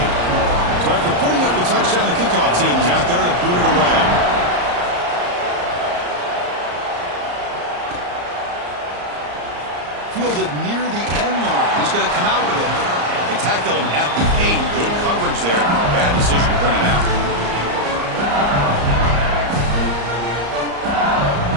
So after putting up the touchdown, the kickoff team is out there to boot it away. Fielded near the end line. He's going to come out with it. They tackle him at the 8. Good coverage there. Bad decision to bring him out.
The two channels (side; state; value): left; late; 34 ms